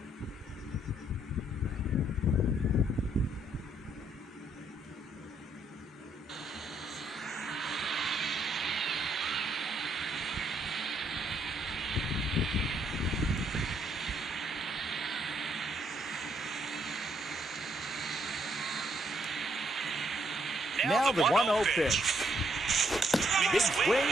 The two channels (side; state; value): both; normal; correlation 0.72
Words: Now the 1-0 pitch. Big swing